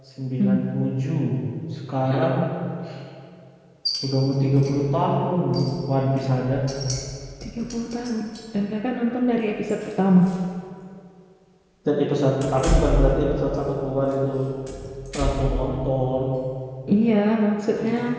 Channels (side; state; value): both; identical; correlation 1.00